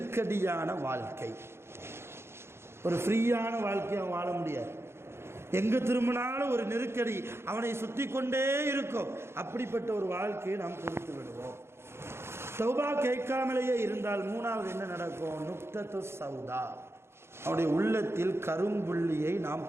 வாழ்க்கை. ஒரு ஃப்ரீயான வாழ்க்கையை அவன் வாழ முடியாது, எங்கு திரும்பினாலும் ஒரு நெருக்கடி அவனை சுற்றி கொண்டே இருக்கும். அப்படிப்பட்ட ஒரு வாழ்க்கையை நாம் கொடுத்து விடுவோம். தௌபா கேட்காமலேயே இருந்தால் மூணாவது என்ன நடக்கும்? நுக்தத்து சௌதா, அவனுடைய உள்ளத்தில் கரும்புள்ளியை நாம்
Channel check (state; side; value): late; left; 0.12 ms